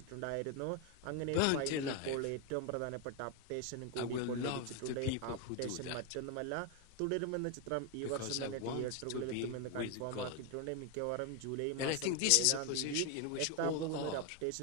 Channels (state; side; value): different; both; correlation 0.01